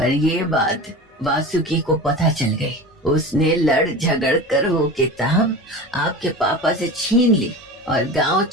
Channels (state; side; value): normal; both; correlation 0.32